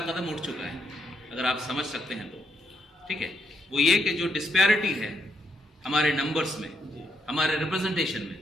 कदम उठ चुका है, अगर आप समझ सकते हैं तो। ठीक है, वो ये कि जो डिस्पैरिटी है हमारे नंबर्स में, हमारे रिप्रेजेंटेशन में,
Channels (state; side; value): normal; both; correlation 0.76